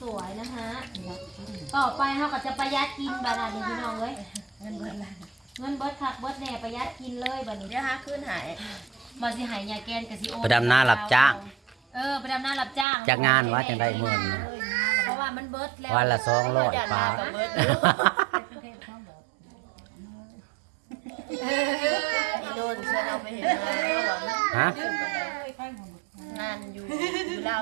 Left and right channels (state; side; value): drops out; left; at 12.9 s